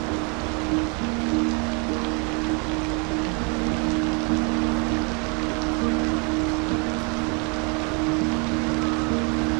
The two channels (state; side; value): quieter; left; 33.6 dB